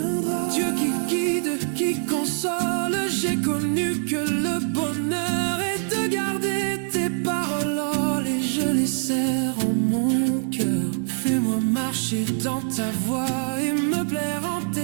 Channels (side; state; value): left; silent; 63 dB below the other